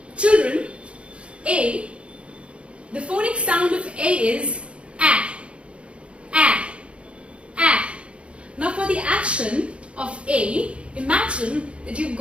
Children, A, the phonic sound of A is A. Now for the action of A, imagine that you've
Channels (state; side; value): late; left; 0.060 ms